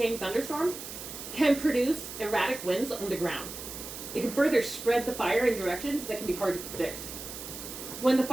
thunderstorm can produce erratic winds on the ground. It can further spread the fire in directions that can be hard to predict. When the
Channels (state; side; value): noise; right; hiss, 10 dB below the sound